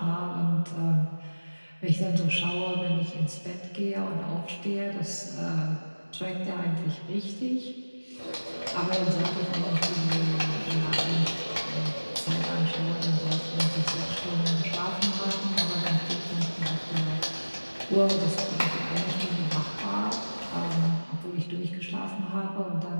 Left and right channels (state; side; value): inverted; both; correlation -1.00